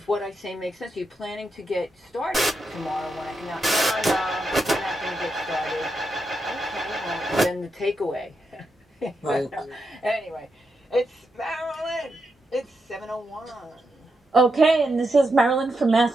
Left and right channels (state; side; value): normal; both; correlation 0.84